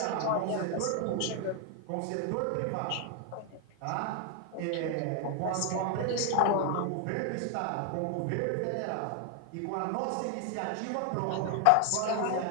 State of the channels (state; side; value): different; both; correlation 0.00